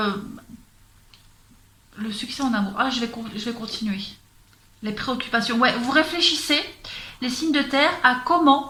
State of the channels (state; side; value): identical; both; correlation 1.00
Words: succès en amour. Ah, je vais continuer. Les préoccupations. Ouais, vous réfléchissez, les signes de terre, à